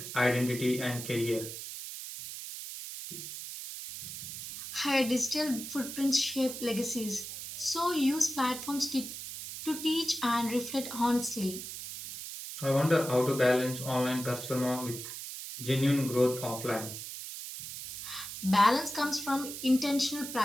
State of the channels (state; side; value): noise; right; hiss, 9 dB below the sound